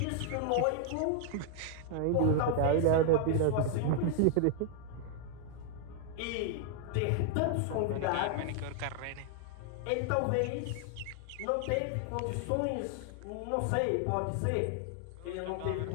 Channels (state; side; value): different; both; correlation 0.00